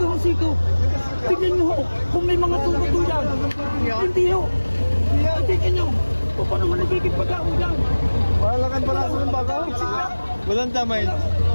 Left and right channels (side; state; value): both; inverted; correlation -1.00